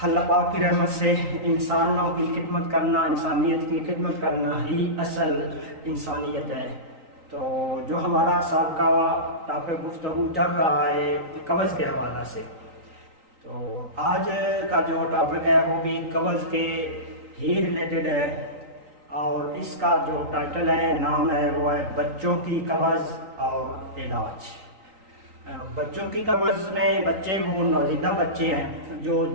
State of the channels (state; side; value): late; left; 3.9 ms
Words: اللہ پاک کی رحمت سے انسانوں کی خدمت کرنا، انسانیت کی خدمت کرنا ہی اصل انسانیت ہے۔ تو جو ہمارا سابقہ ٹاپک گفتگو چل رہا ہے قبض کے حوالہ سے، تو آج کا جو ٹاپک ہے وہ بھی قبض کے ہی ریلیٹڈ ہے، اور اس کا جو ٹائٹل ہے، نام ہے، وہ ہے بچوں کی قبض اور علاج۔ بچوں کی قبض میں بچے وہ نوزائیدہ بچے ہیں جو